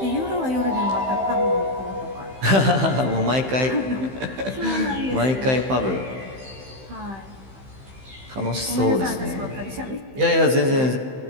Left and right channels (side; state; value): left; late; 15 ms